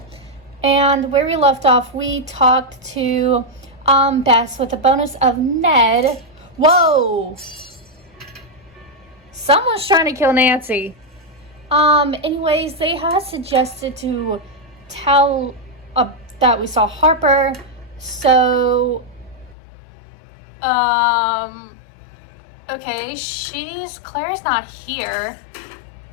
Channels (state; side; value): drops out; right; at 19.6 s